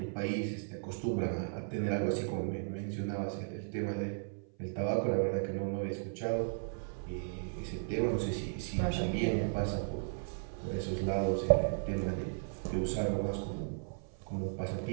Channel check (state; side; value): silent; left; 54 dB below the other